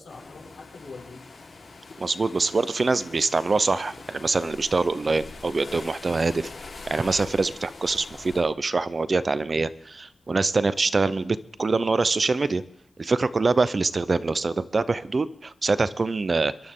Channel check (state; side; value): quieter; left; 3.2 dB